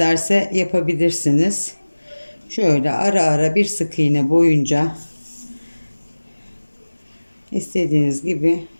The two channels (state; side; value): inverted; both; correlation -1.00